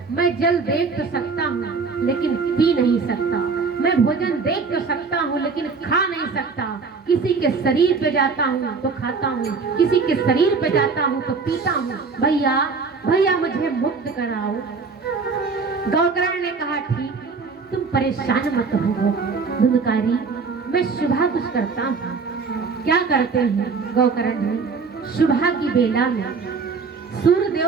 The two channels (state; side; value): quieter; left; 4.8 dB